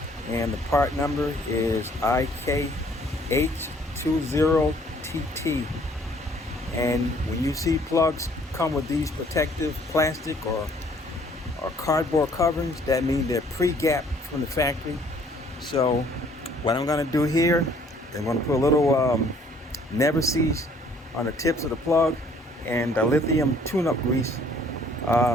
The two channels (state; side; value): normal; both; correlation 0.59